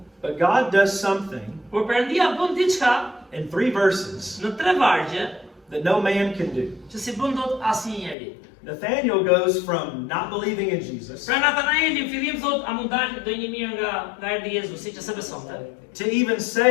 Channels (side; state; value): right; drops out; at 8.2 s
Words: But God does something Por Perëndia bën diçka in 3 verses në 3 vargje that no man can do. që si bën dot asnjë njeri. Nathanael goes from not believing in Jesus Pra Natanaeli në fillim thot, a mund dalë do një mirë nga erdhi Jezusi që se besonte. to even